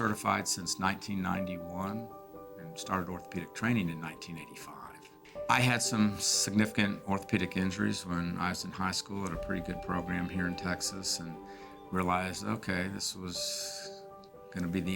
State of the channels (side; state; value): both; identical; correlation 1.00